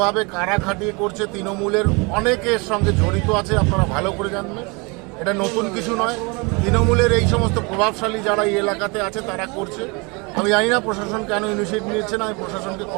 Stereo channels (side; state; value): left; quieter; 29.1 dB